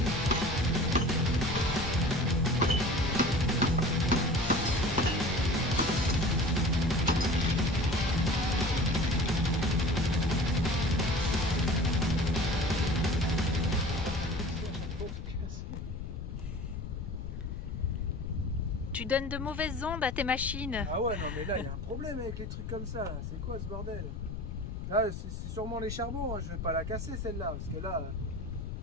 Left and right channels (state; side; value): noise; left; rumble, 7 dB below the sound